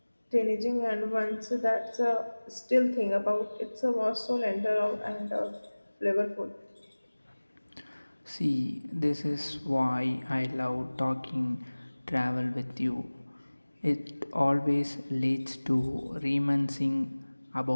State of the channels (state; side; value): inverted; both; correlation -1.00